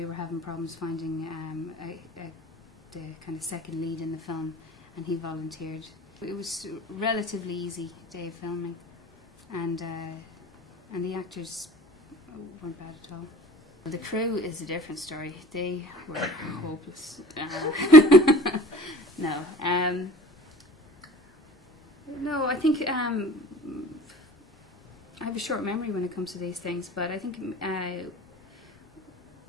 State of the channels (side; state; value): both; normal; correlation 0.44